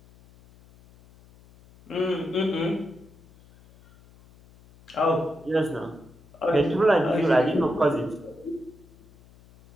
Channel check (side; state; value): left; noise; hum, 26 dB below the sound